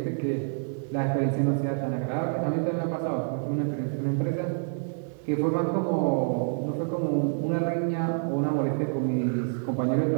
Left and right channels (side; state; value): left; silent; digital silence